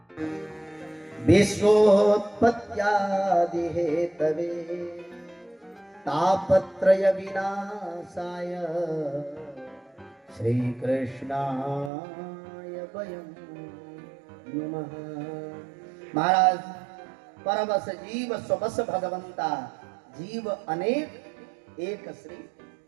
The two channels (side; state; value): left; drops out; at 11.9 s